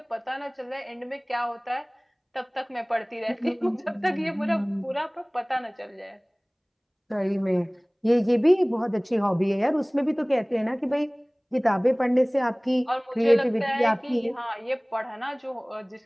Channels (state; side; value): identical; both; correlation 1.00